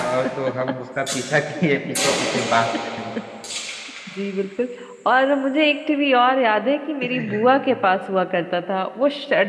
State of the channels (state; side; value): identical; both; correlation 1.00